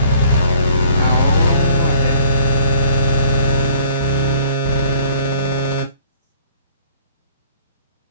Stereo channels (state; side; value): inverted; both; correlation -0.56